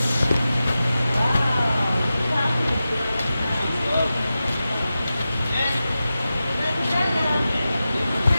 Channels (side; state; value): both; inverted; correlation -0.93